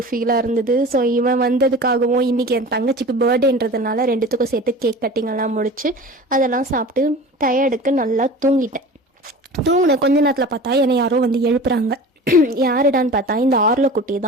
ஃபீலாக இருந்தது. ஸோ இவன் வந்ததுக்காகவும் இன்றைக்கி என் தங்கச்சிக்கு பர்த்டேன்றதுனால ரெண்டுத்துக்கும் சேர்த்து கேக் கட்டிங்கெல்லாம் முடிச்சு அதெல்லாம் சாப்பிட்டு டயர்டுக்கு நல்லா தூங்கிட்டேன். தூங்கின கொஞ்ச நேரத்தில் பார்த்தா என்னை யாரோ வந்து எழுப்புறாங்க. யாருடான்னு பார்த்தா இந்த ஆர்ல குட்டி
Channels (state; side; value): normal; both; correlation 0.37